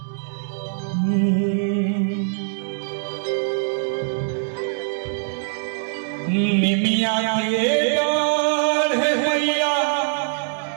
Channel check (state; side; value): silent; left; digital silence